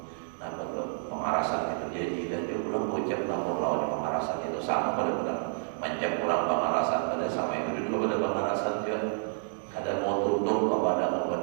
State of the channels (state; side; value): silent; left; digital silence